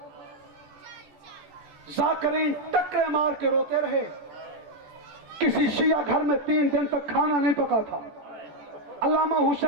ذاکرین ٹکرے مار کے روتے رہے. کسی شیعہ گھر میں 3 دن تک کھانا نہیں پکا تھا. علامہ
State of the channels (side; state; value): left; late; 14 ms